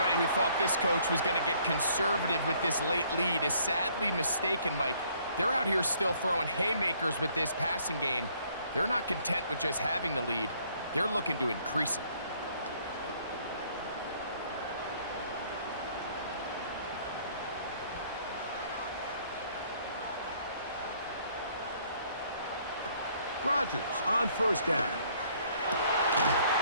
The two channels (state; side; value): inverted; both; correlation -0.63